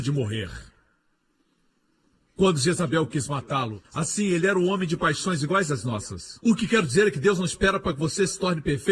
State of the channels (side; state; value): both; identical; correlation 1.00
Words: de morrer. Quando Jezabel quis matá-lo, assim, ele era um homem de paixões iguais às nossas. O que quero dizer é que Deus não espera para que você se torne